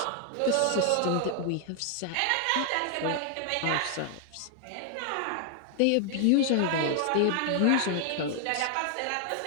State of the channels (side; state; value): both; different; correlation 0.00